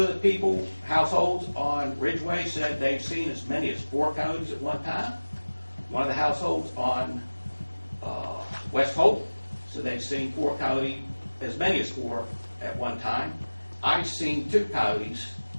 of the households on Ridgeway said they've seen as many as 4 coyotes at one time. One of the households on West Hope said they've seen 4 coyotes, as many as 4 at one time. I've seen 2 coyotes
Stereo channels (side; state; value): both; inverted; correlation -1.00